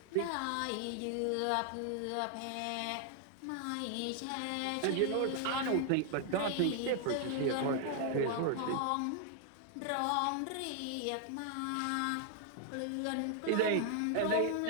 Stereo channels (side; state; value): both; different; correlation 0.00